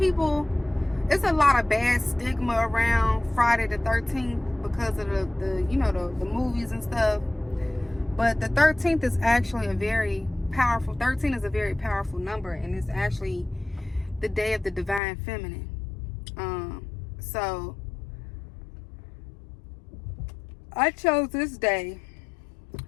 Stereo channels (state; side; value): drops out; right; at 15.0 s